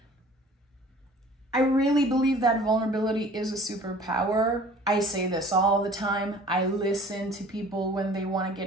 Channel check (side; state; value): both; normal; correlation 0.48